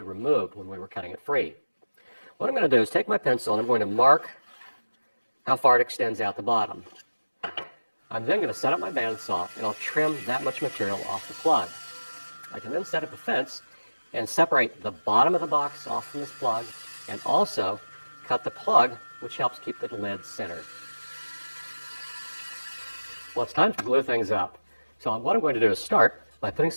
removed when we were cutting it free. What I'm going to do is take my pencil and I'm going to mark how far it extends out the bottom. I'm then going to set up my bandsaw and I'll trim that much material off the plug. I can then set up a fence and separate the bottom of the box off from this plug and also cut the plug, which helps keep the lid centered. Well, it's time to glue things up. So what I'm going to do is start by putting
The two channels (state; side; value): inverted; both; correlation -1.00